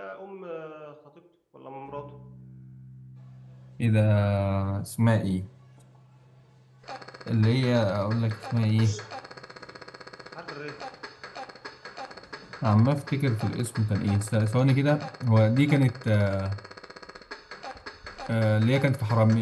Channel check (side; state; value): both; identical; correlation 1.00